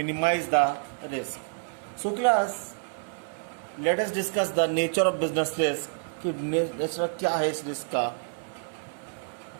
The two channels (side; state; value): left; silent; 59 dB below the other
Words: minimize the risk. So class, let us discuss the nature of business risk. कि nature क्या है इस risk का.